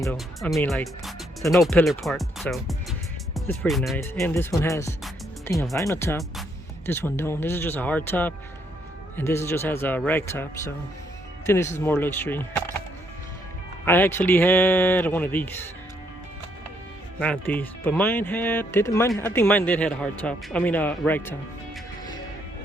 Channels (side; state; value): both; normal; correlation 0.72